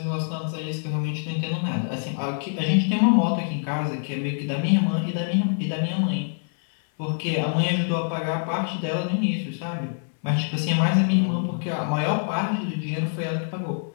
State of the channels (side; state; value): right; silent; 62 dB below the other